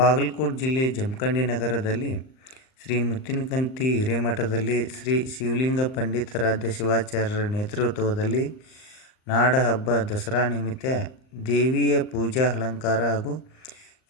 ಜಿಲ್ಲೆ ಜಮಖಂಡಿ ನಗರದಲ್ಲಿ ಶ್ರೀ ಮುತ್ತಿನಕಂತಿ ಹಿರೇಮಠದಲ್ಲಿ ಶ್ರೀ ಶಿವಲಿಂಗ ಪಂಡಿತಾರಾಧ್ಯ ಶಿವಾಚಾರ್ಯರ ನೇತೃತ್ವದಲ್ಲಿ ನಾಡಹಬ್ಬ ದಸರಾ ನಿಮಿತ್ತ ದೇವಿಯ ಪೂಜಾ ಅಲಂಕಾರ ಹಾಗೂ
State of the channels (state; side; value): late; right; 38 ms